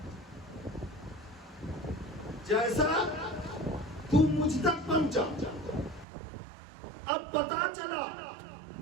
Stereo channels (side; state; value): left; drops out; at 6.1 s